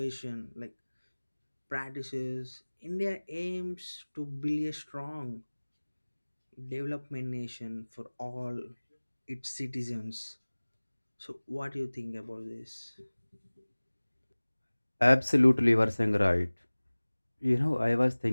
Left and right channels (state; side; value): inverted; both; correlation -1.00